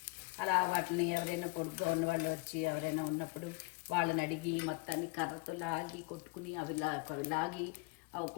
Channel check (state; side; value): quieter; right; 27.6 dB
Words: అలా వాటిని ఎవరైనా పొడుగ్గా ఉన్నవాళ్ళు వచ్చి ఎవరైనా ఉన్నప్పుడు వాళ్ళని అడిగి మొత్తాన్ని కర్రతో లాగి కొట్టుకుని అవి లాగి అవి